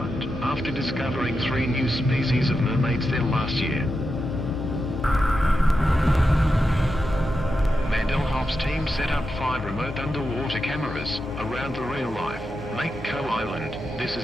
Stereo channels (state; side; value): normal; both; correlation 0.88